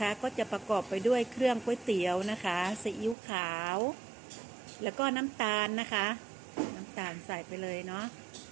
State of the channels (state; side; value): drops out; left; at 3.2 s